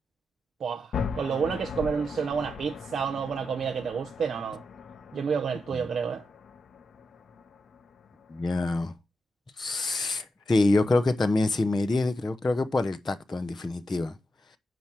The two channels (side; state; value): both; normal; correlation 0.86